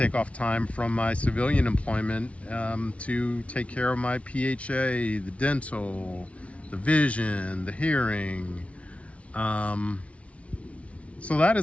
off time from my civilian employment to take care of my PHA, the dental, the vision, the hearing. So that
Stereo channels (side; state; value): right; late; 0.063 ms